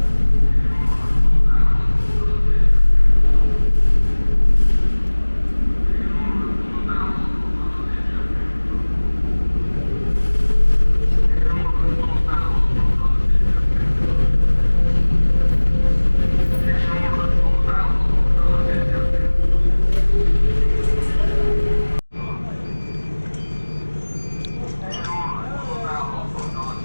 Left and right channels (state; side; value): inverted; both; correlation -1.00